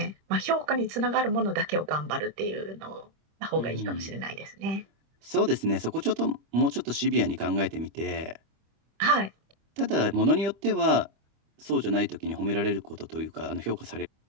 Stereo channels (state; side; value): late; left; 25 ms